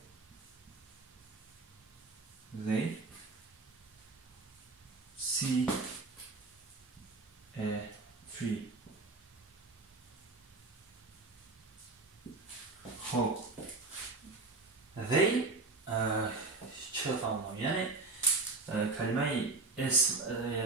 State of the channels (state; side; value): quieter; left; 3.6 dB